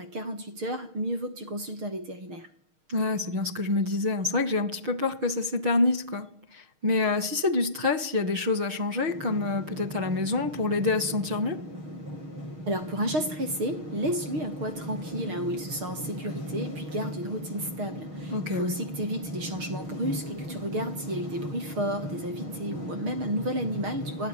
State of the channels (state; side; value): late; left; 6.4 ms